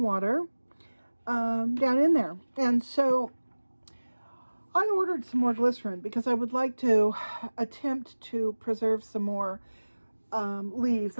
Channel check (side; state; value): both; inverted; correlation -1.00